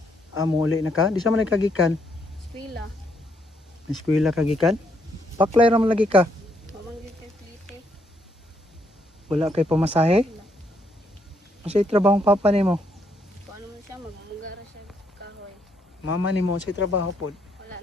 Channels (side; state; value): both; normal; correlation 0.74